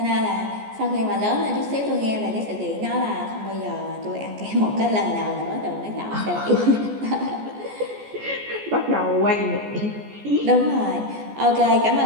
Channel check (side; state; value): left; late; 14 ms